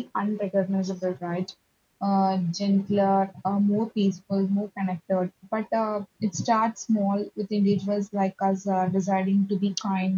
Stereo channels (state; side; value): identical; both; correlation 1.00